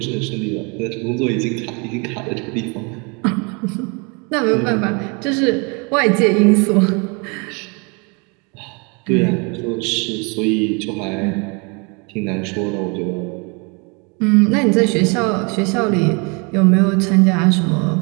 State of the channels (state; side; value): quieter; left; 31.8 dB